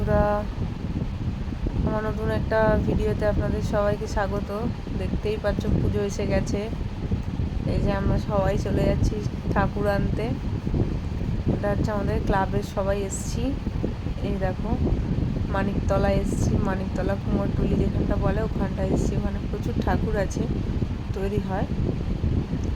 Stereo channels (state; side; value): identical; both; correlation 1.00